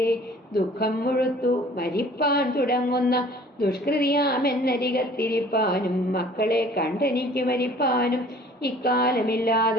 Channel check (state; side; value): normal; both; correlation 0.51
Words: ദുഃഖം മുഴുത്തു മരിപ്പാൻ തുടങ്ങുന്ന ദുഷ്കൃതിയാമെന്നരികത്തിരിപ്പാനും മക്കളെ കണ്ടെനിക്ക് മരിപ്പാനും